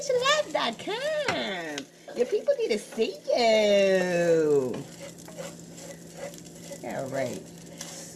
your life.com. Your people need to see you. All right.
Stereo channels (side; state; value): both; identical; correlation 1.00